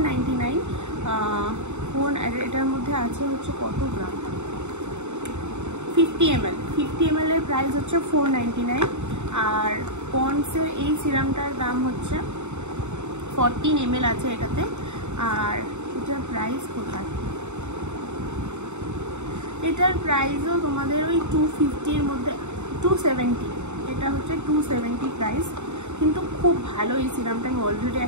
এটার মধ্যে আছে হচ্ছে কত গ্রাম, 50 ml এর প্রাইস হচ্ছে 499। আর পন্ডসের এই সিরামটার দাম হচ্ছে 14 ml আছে এটাতে। আর এটার প্রাইস কোথায়, এটার প্রাইসও তোমাদের ওই 250-র মধ্যে, 270, এটা হচ্ছে 270 প্রাইস। কিন্তু খুব ভালো এই সিরামটা, আমি অলরেডি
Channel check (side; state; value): left; late; 0.83 ms